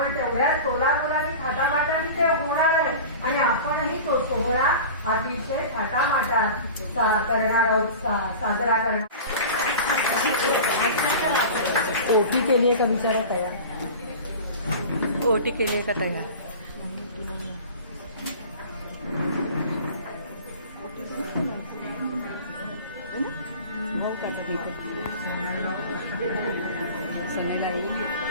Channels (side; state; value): both; inverted; correlation -0.36